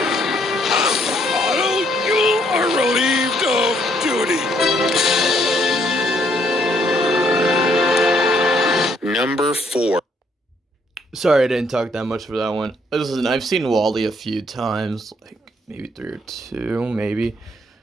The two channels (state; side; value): normal; both; correlation 0.69